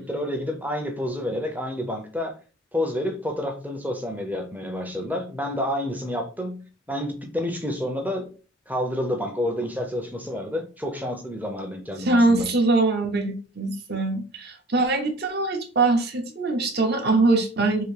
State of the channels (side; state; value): both; normal; correlation 0.51